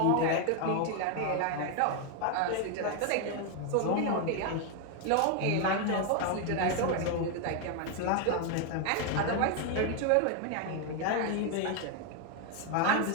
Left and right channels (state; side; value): different; both; correlation 0.01